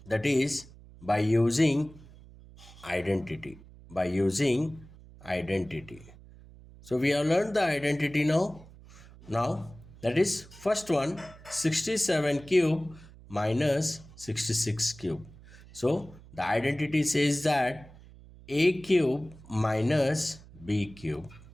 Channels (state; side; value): noise; right; hum, 21 dB below the sound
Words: that is by using identity. By using identity. So we have learned the identity now. Now that is first one, 67 cube minus 66 cube. So the identity says that a cube minus b cube